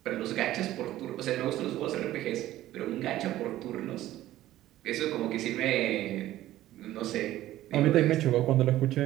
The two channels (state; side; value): quieter; left; 14.5 dB